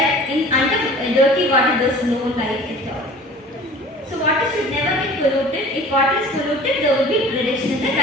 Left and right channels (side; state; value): both; normal; correlation 0.44